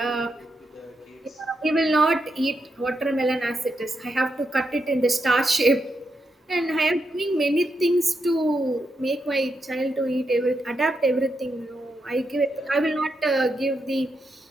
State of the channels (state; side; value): normal; both; correlation 0.84